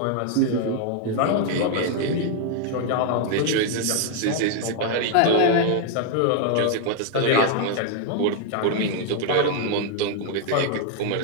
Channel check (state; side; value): different; both; correlation 0.00